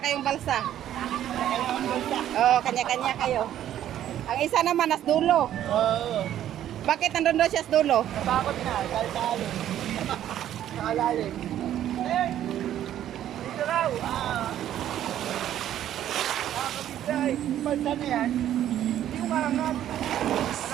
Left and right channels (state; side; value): quieter; left; 11.5 dB